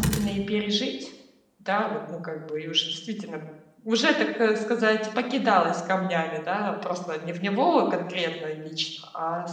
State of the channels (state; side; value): identical; both; correlation 1.00